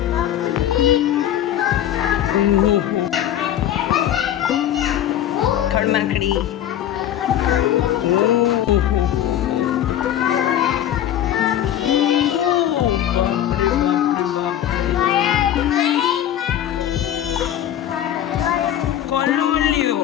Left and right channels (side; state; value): right; quieter; 11.3 dB